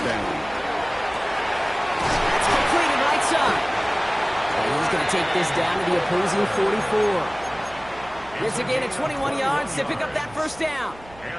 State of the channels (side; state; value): right; noise; hum, 21 dB below the sound